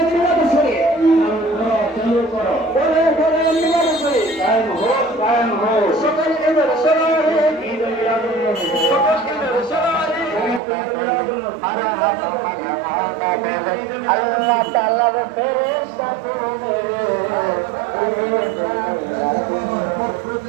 মিলাদ শরীফ চালু করো, করে করে মিলাদ শরীফ কায়েম হোক, কায়েম হোক। সকল ঈদের সলারে, ঈদ মিলাদুন নবী, সকল ঈদের সলারে, ঈদ মিলাদুন নবী। আল্লাহ তাআলার ফেরেশতা তুমি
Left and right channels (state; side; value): drops out; left; at 10.6 s